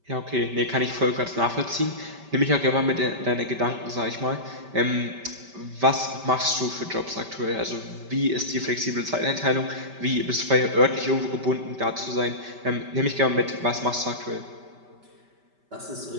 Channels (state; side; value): late; left; 5.1 ms